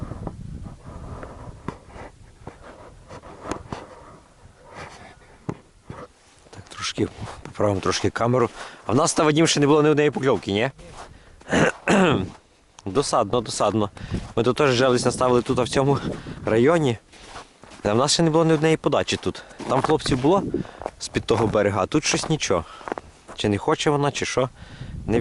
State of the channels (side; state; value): both; identical; correlation 1.00